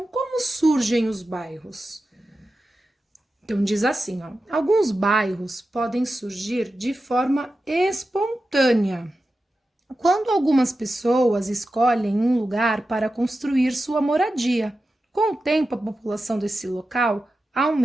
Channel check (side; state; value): both; normal; correlation 0.92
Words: como surgem os bairros? Então, diz assim, ó, alguns bairros podem surgir de forma espontânea, quando algumas pessoas escolhem um lugar para construir sua moradia. Com o tempo, a população desse local